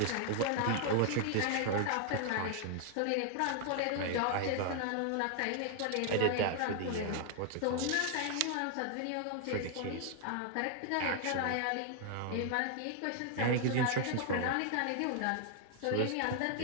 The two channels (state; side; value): different; both; correlation 0.00